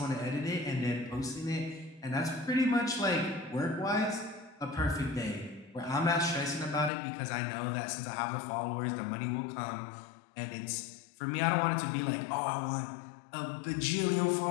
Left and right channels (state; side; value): drops out; right; at 6.9 s